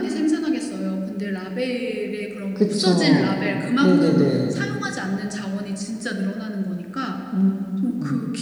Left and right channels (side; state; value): both; identical; correlation 1.00